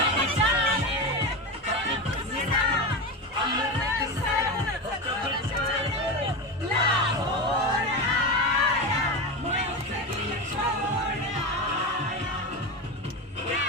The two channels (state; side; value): normal; both; correlation 0.20